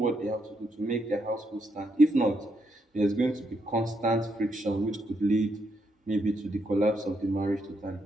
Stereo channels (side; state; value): both; normal; correlation 0.79